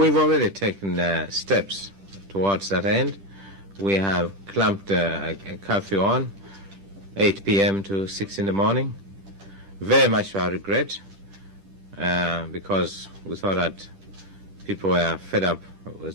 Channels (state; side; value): late; left; 10 ms